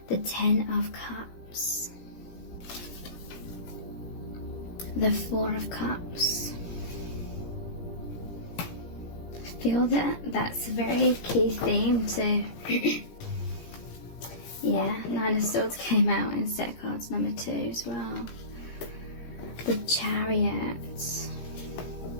The 10 of Cups, the 4 of Cups. I feel that that's a very key theme to yeah, 9 of Swords came out in set cards number 2 as well. The Chariot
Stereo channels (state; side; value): late; right; 17 ms